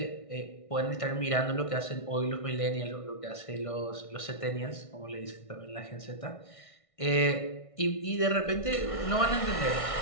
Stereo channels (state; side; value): late; right; 1.6 ms